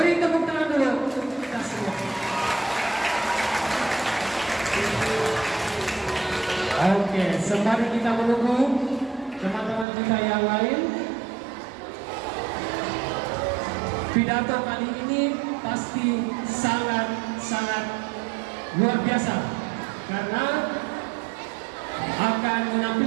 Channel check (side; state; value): left; drops out; at 9.9 s